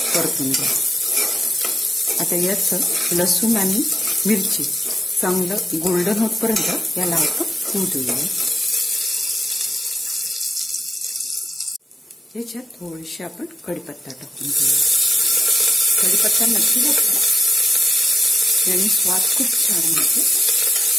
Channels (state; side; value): normal; both; correlation 0.91